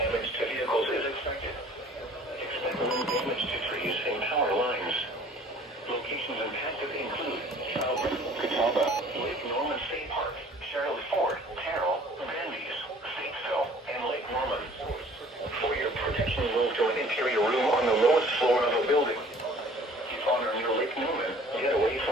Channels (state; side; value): normal; both; correlation 0.52